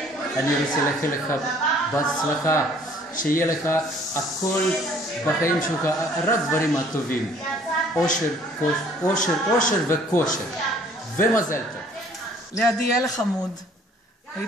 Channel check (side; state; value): both; normal; correlation 0.57